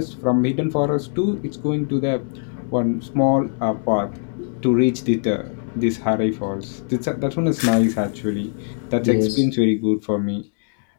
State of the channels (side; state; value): right; silent; digital silence